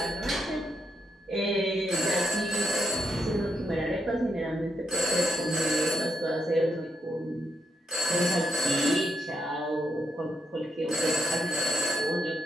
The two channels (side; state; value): both; normal; correlation 0.80